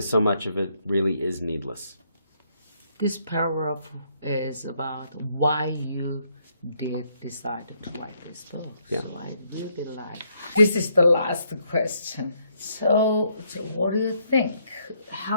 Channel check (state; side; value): inverted; both; correlation -0.72